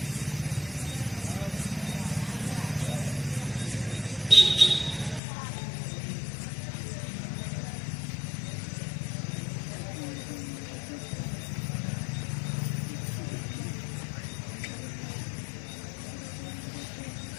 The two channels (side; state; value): right; drops out; at 5.2 s